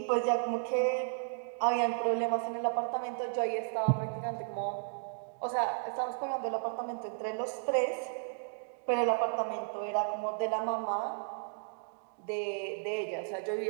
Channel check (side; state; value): left; silent; digital silence